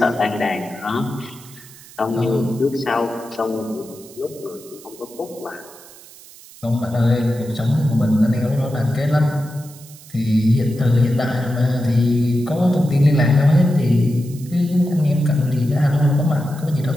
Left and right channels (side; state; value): right; noise; hiss, 21 dB below the sound